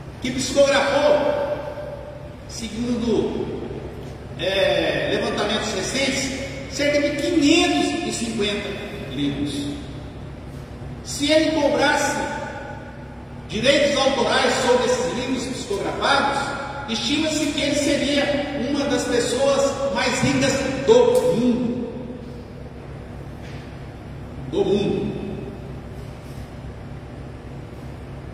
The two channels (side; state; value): both; identical; correlation 1.00